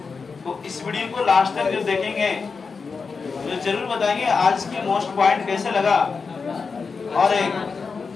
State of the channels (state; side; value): quieter; right; 5.0 dB